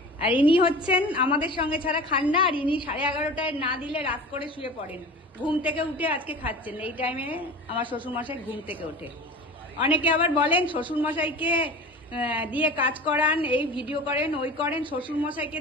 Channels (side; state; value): both; normal; correlation 0.36